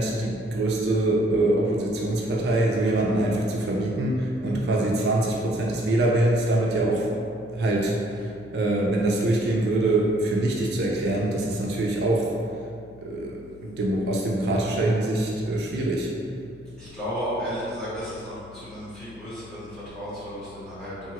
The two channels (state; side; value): noise; left; hum, 22 dB below the sound